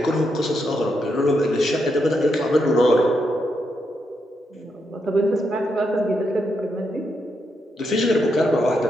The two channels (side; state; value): both; normal; correlation 0.81